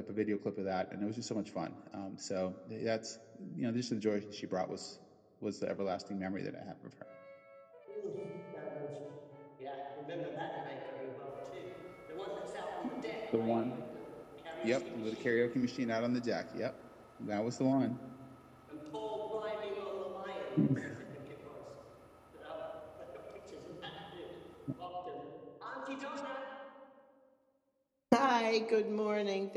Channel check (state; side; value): identical; both; correlation 1.00